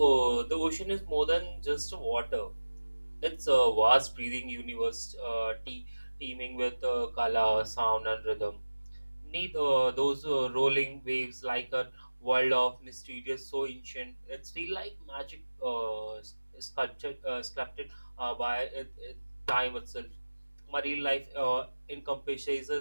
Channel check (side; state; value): both; inverted; correlation -1.00